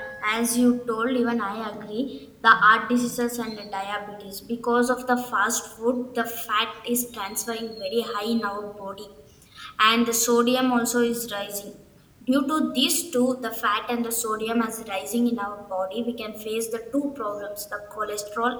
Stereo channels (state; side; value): identical; both; correlation 1.00